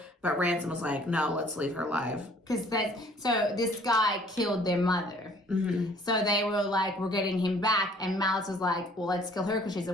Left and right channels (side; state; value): both; normal; correlation 0.56